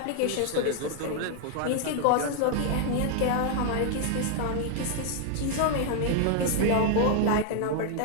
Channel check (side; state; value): both; different; correlation 0.00